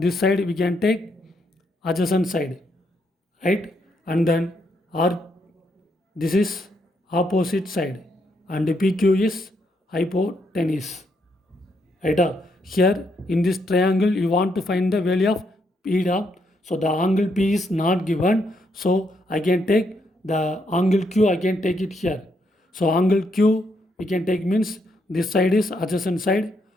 side we can take adjacent side, right? And then R, this is opposite side, and PQ is hypotenuse, right? Here in this triangle you want to find the value of beta, so the angle P is not given, so I can take the angle Q, I can take it here. So angle Q we can take means this side is adjacent side,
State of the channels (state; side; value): normal; both; correlation 0.76